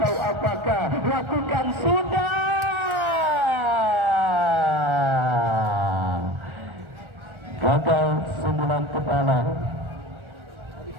apakah. Lakukan sudah. Gagal sundulan kepala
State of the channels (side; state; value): left; late; 1.4 ms